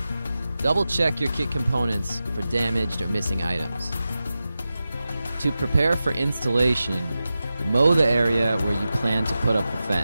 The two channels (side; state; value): both; inverted; correlation -0.93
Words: Double check your kit components for damaged or missing items. To prepare for installation, mow the area where you plan to put up the